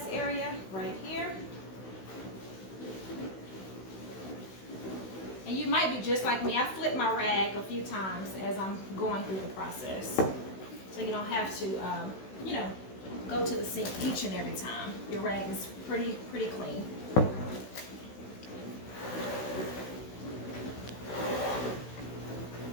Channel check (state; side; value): late; right; 16 ms